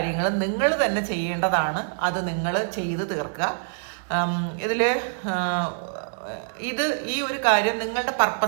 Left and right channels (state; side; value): silent; left; digital silence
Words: നിങ്ങൾ തന്നെ ചെയ്യേണ്ടതാണ്. അത് നിങ്ങൾ ചെയ്ത് തീർക്കുക. ഈ ഒരു കാര്യം നിങ്ങളുടെ